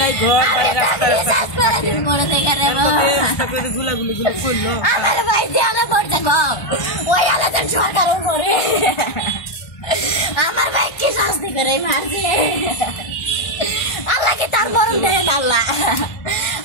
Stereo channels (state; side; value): late; right; 1.3 ms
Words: ঘর রিচার্জ করে দিন মরে দেখে রে গুলাগুলি গুলো করলো আমার ভাই দেয়ালে পড়ছে গো ওই আলাদা সরকার উপরে আমার ভাই কি শাস্তি করে মারছে আল্লাহ কি তার মরণ দেয় না আল্লাহ